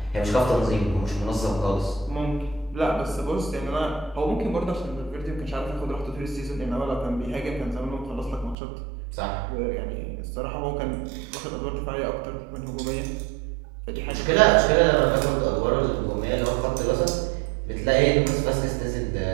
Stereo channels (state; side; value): drops out; left; at 8.6 s